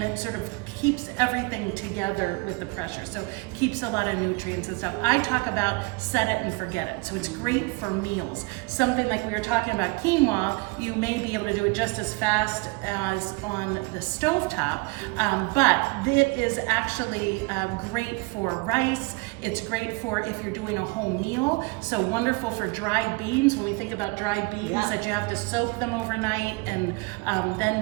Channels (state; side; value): quieter; left; 27.6 dB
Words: it sort of keeps everything together with the pressure. So keeps a lot of nutrients and stuff. I talk about set it and forget it. So it's great for meals. Something like we were talking about quinoa, you may be able to do it just as fast as on the stovetop, but it is actually great for rice. It's great for if you're doing a whole meal. So wonderful for dried beans. When we think about dried beans, that you have to soak them overnight, and